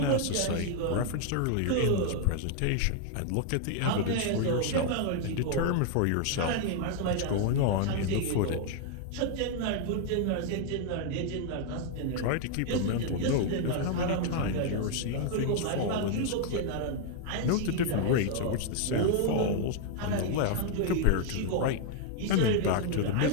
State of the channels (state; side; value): different; both; correlation 0.00